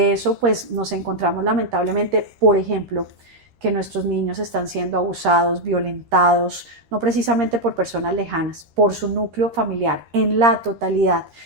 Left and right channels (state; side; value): late; left; 13 ms